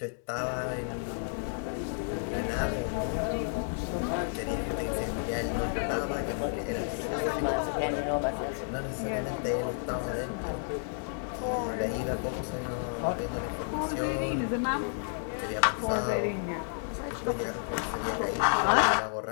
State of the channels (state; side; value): silent; right; 57 dB below the other